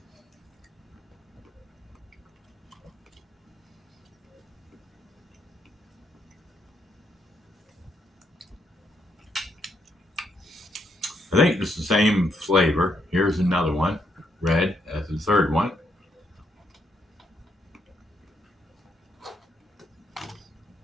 I think it's the same flavor. Here's another one, red, as the third one.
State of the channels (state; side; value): normal; both; correlation 0.75